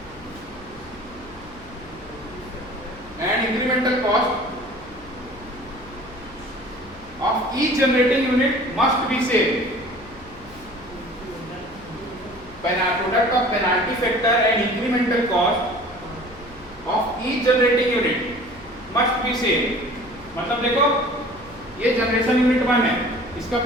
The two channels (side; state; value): left; noise; hum, 22 dB below the sound